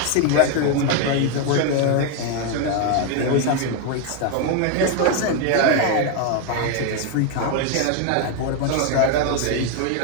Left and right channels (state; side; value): different; both; correlation 0.01